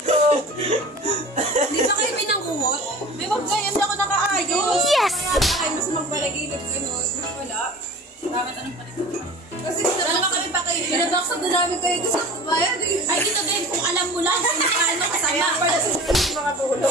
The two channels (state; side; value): normal; both; correlation 0.40